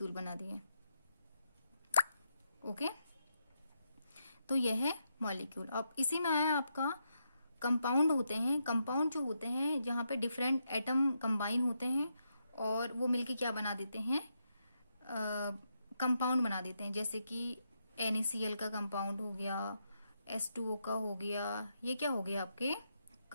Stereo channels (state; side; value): inverted; both; correlation -0.82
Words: बना दिए। ओके, तो यह है मॉलिक्यूल। अब इसी में आया आपका कंपाउंड होते हैं। कंपाउंड जो होते हैं जहाँ पे डिफरेंट एटम कंबाइन होते हैं और वो मिलके क्या बना देते हैं, कंपाउंड बना देते हैं। जैसे कि NaCl का कंपाउंड हो गया, H2O का हो गया, ये क्या हो गया आपके